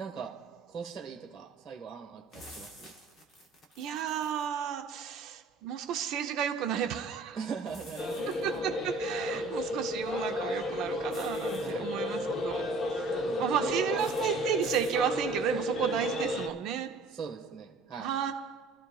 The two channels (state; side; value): quieter; left; 3.6 dB